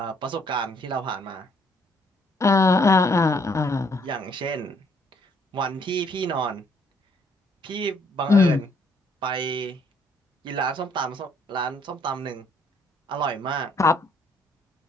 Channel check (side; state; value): both; normal; correlation 0.66